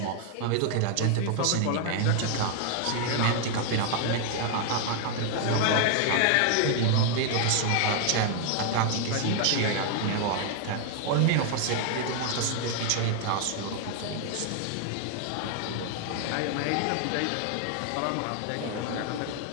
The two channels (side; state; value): both; different; correlation 0.00